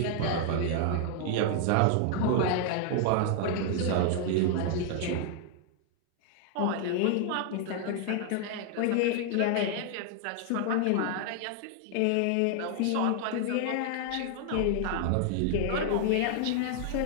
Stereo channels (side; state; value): both; different; correlation 0.00